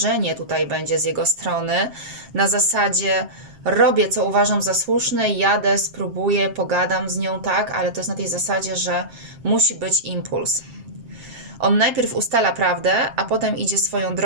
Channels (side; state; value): left; late; 7.5 ms